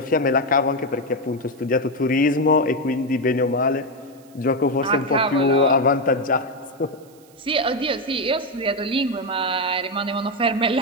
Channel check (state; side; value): noise; right; hiss, 29 dB below the sound